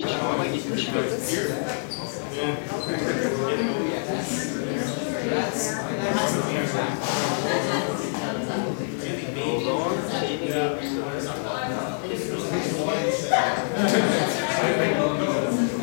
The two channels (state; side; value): silent; right; digital silence